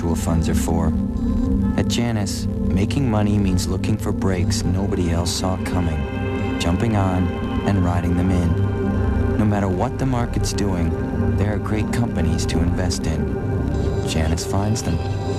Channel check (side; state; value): both; identical; correlation 1.00